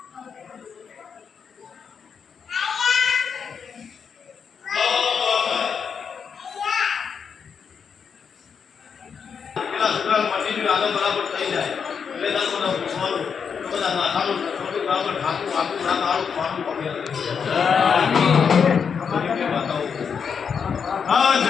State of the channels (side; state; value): right; quieter; 6.5 dB